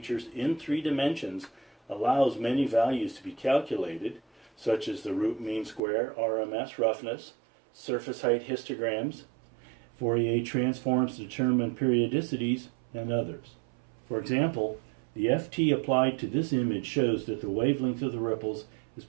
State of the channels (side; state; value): left; drops out; at 5.8 s